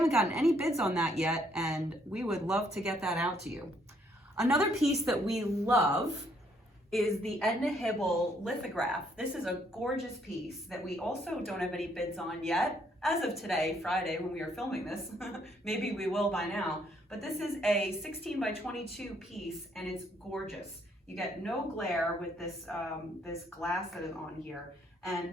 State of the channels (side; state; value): both; normal; correlation 0.69